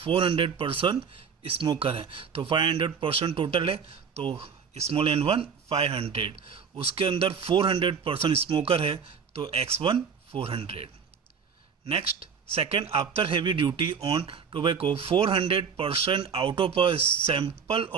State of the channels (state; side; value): quieter; left; 6.4 dB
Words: पर्सन स्मोकर है, तो 500 पर्सन टोटल है, तो स्मॉल n1 500, उसके अंदर 400 पर्सन स्मोकर है, तो x1 400। Next, second, after heavy duty on tobacco 400 person out of a sample